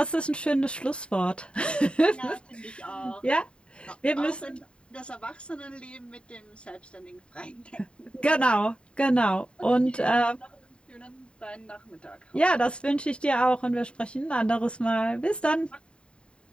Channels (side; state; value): right; late; 0.054 ms